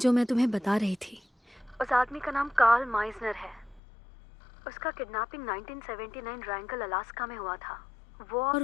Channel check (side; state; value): right; drops out; at 3.8 s